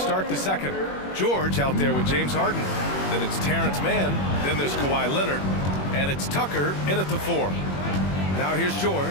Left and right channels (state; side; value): late; right; 21 ms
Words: the second. George out there with James Harden. Then it's Terrence Mann. Then there's Kawhi Leonard. And it's Tucker in at the 4. Now here's George.